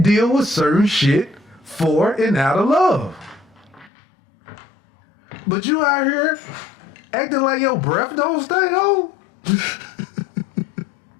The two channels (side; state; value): right; drops out; at 3.9 s